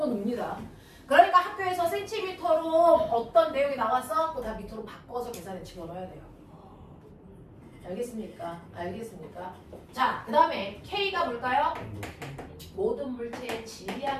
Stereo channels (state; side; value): identical; both; correlation 1.00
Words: 넣습니다. 그러니까 학교에서 센티미터로 어떤 내용이 나왔어? 그거 다 미터로 바꿔서 계산에 집어넣어야 돼요. 알겠습니까? 알겠습니까? 자, 그 다음에 K가 뭘까요? 모든 물체의